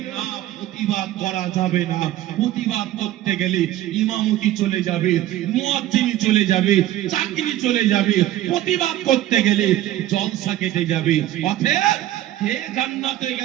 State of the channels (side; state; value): left; quieter; 13.8 dB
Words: না, প্রতিবাদ করা যাবে না। প্রতিবাদ করতে গেলে ইমামতি চলে যাবে, মুয়াজ্জিনি চলে যাবে, চাকরি চলে যাবে। প্রতিবাদ করতে গেলে জলসা কেটে যাবে। অতএব কে জান্নাতে